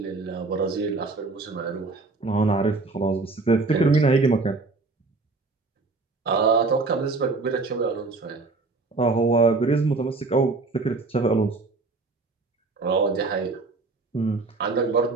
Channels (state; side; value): quieter; left; 3.7 dB